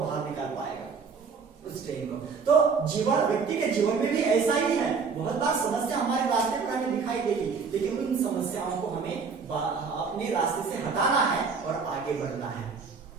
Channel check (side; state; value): left; quieter; 5.3 dB